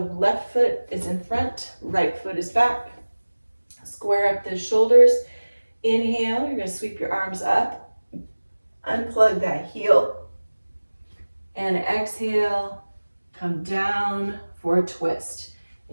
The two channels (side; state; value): both; inverted; correlation -1.00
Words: left foot is in front, right foot is back. Square up those shoulders. Inhale, you're going to sweep your arms up. Unplug that heel. And exhale, come down for a twist.